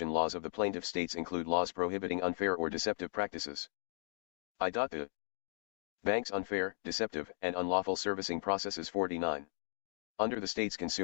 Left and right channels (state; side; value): silent; right; digital silence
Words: laws of the plaintiff states include laws prohibiting unfair or deceptive practices. The bank's unfair, deceptive, and unlawful servicing processes. 49. Under the state's